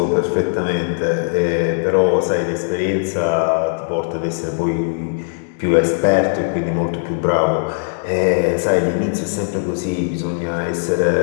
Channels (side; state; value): right; silent; 67 dB below the other